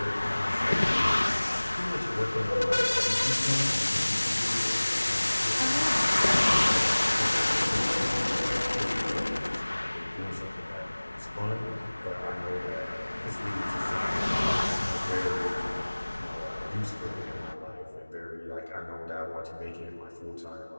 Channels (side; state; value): both; inverted; correlation -1.00